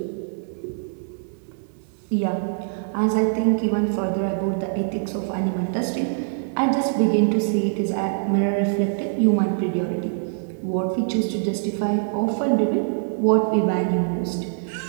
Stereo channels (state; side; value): silent; left; digital silence